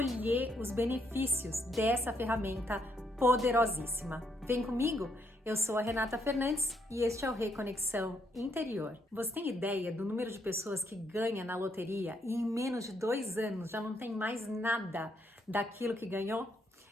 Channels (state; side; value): normal; both; correlation 0.74